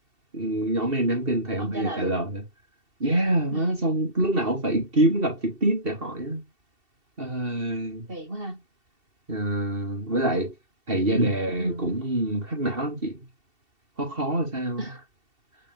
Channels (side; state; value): left; late; 2.7 ms